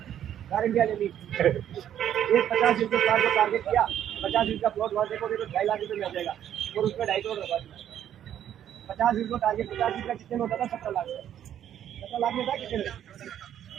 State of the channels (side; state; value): left; quieter; 10.4 dB